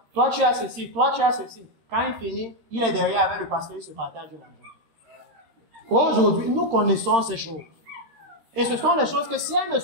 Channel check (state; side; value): late; left; 13 ms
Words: Toi, tu as ceci. Toi, tu as ceci. Quand il finit, il est derrière avec le pasteur, il se partage de l'argent. Aujourd'hui, nous connaissons ces choses. Et ce sont les choses que si elles ne